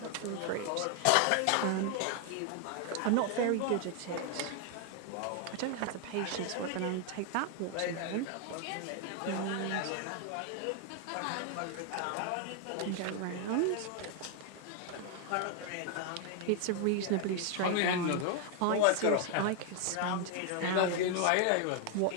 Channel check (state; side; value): different; both; correlation 0.00